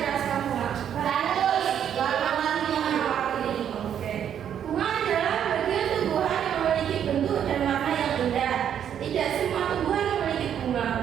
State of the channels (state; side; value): quieter; left; 9.2 dB